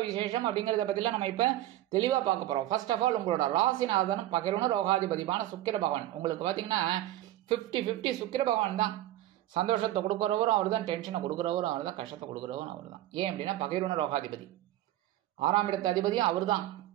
விசேஷம் அப்படிங்கிறத பற்றிலாம் நம்ம இப்போ தெளிவாக பார்க்க போகிறோம். ஃபர்ஸ்ட் ஆஃப் ஆல், உங்களோட ராசிநாதனும் பகிர்வுன ரோகாதிபதியான சுக்கிர பகவான் உங்களுக்கு பார்த்தீங்கன்னா 50-50 சுக்கிர பகவான் தான். சந்தோஷத்தை கொடுக்குறவரும் அவர் தான், டென்ஷனை கொடுக்குறவரும் அவர் தான், கஷ்டத்தை கொடுக்குறவரும் அவர் தான். ஏன் அப்படின்னா பகிர்வுன ரோகாதிபதி, 6ஆம் இடத்து அதிபதியும் அவர் தான்.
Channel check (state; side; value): quieter; left; 14.3 dB